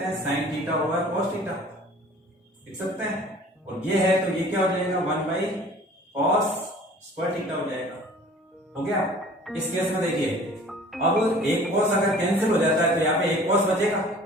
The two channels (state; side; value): normal; both; correlation 0.48